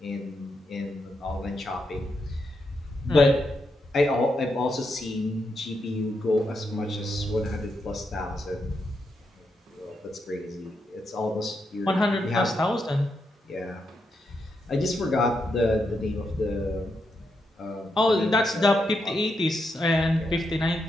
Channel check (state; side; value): normal; both; correlation 0.83